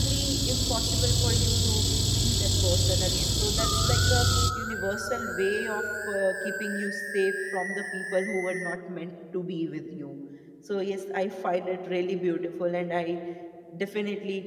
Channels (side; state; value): both; identical; correlation 1.00